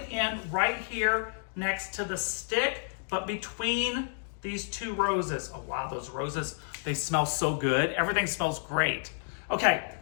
in right here next to the stick, but between these two roses. Oh wow, those roses, they smell so good. Everything smells great. Okay,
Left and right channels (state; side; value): silent; right; digital silence